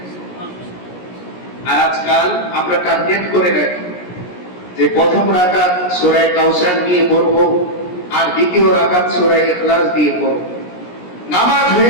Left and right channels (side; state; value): right; late; 17 ms